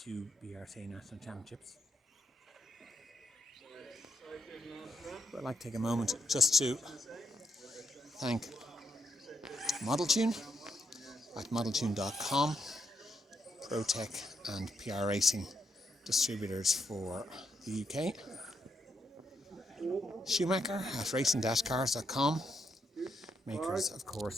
BRCA National Championships. I'd like to take a moment just to thank ModelTune at modeltune.com, ProTech and PR Racing distributors for the UK, Schumacher at racing-cars.com, makers of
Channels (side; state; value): both; normal; correlation 0.79